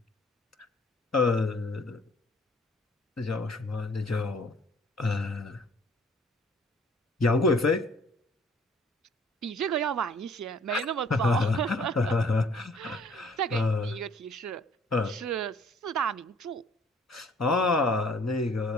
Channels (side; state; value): both; normal; correlation 0.56